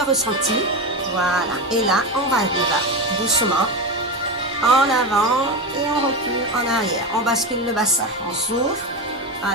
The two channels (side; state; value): both; normal; correlation 0.18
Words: ressenti. Voilà, et là, on va doucement en avant et on recule en arrière. On bascule le bassin, on souffle.